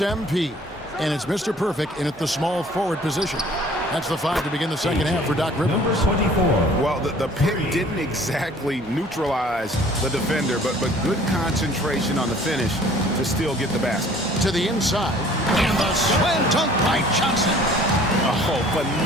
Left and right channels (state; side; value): normal; both; correlation 0.53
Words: MP. And it's Mr. Perfect in at the small forward position. That's the five to begin the second half for Doc Rivers. Number 24. Well, the pick didn't exactly neutralize the defender, but good concentration on the finish to still get the basket. To the inside. And the slam dunk by Johnson. Oh,